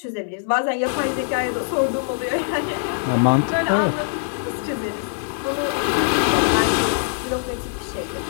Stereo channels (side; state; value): right; silent; digital silence